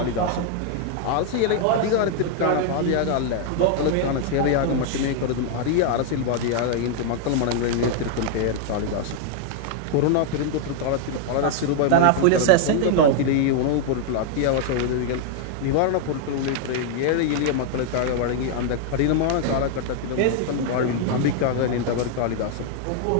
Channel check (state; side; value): different; both; correlation 0.00